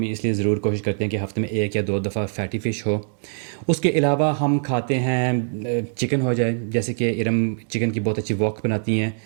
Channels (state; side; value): silent; left; digital silence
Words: اس لیے ضرور کوشش کرتے ہیں کہ ہفتے میں 1 یا 2 دفعہ فیٹی فش ہو. اس کے علاوہ ہم کھاتے ہیں چکن ہو جائے, جیسے کہ ارم چکن کی بہت اچھی وok بناتی ہیں.